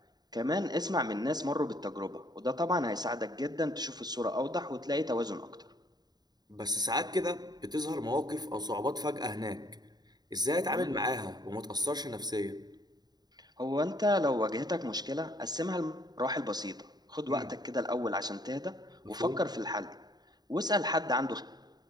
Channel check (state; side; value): late; left; 0.20 ms